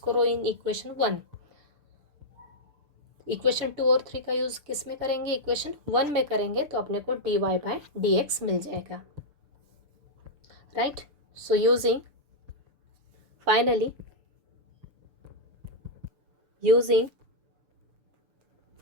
करो इन इक्वेशन 1। इक्वेशन 2 और 3 का यूज़ किस में करेंगे, इक्वेशन 1 में करेंगे, तो अपने को dy/dx मिल जाएगा, right? So using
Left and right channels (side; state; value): left; late; 6.8 ms